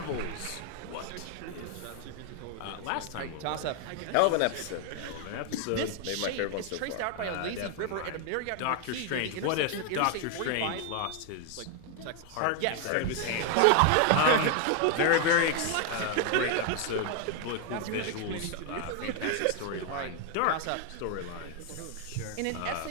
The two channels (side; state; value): both; different; correlation 0.00